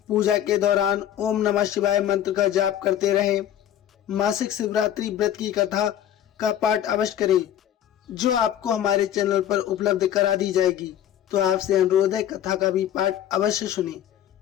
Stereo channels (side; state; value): right; quieter; 10.9 dB